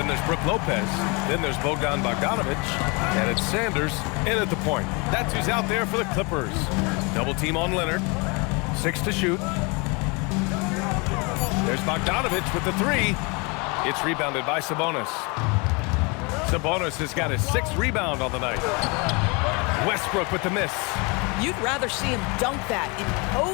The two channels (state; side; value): quieter; right; 29.7 dB